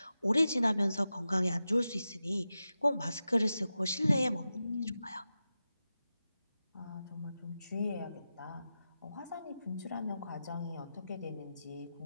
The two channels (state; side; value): inverted; both; correlation -0.92